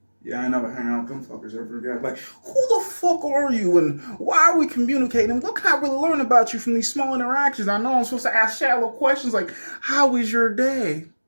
yeah, I never hang out with them fuckers ever again. Like, who the fuck are you, and why are we communicating? And what can I really learn about you from these small interactions? I know I'm supposed to ask shallow questions like, how was your day?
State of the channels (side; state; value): both; inverted; correlation -1.00